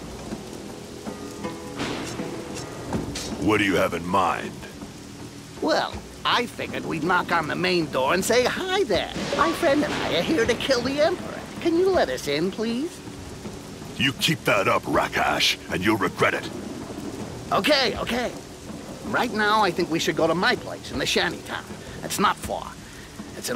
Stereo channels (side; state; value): both; identical; correlation 1.00